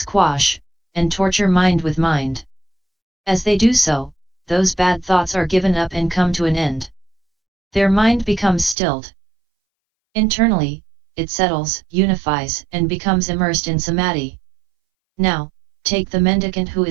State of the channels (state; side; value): drops out; left; at 8.8 s